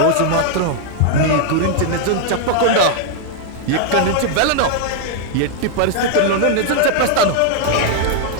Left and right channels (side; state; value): both; different; correlation 0.00